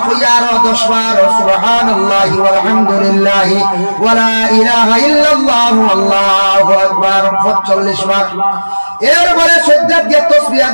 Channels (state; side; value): inverted; both; correlation -1.00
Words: কইয়া 10 বার সুবহানাল্লাহি ওয়ালহামদুলিল্লাহি ওয়ালা ইলাহা ইল্লাল্লাহু আল্লাহু আকবার 45 বার এরপরে সিজদাত গিয়ে তাসবিহ